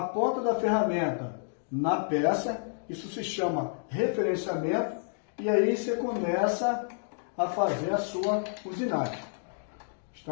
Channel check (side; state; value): right; silent; digital silence